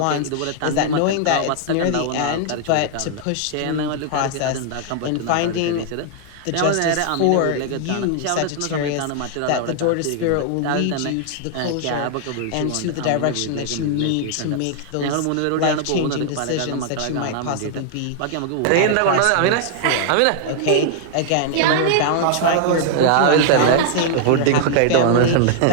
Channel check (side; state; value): both; different; correlation -0.01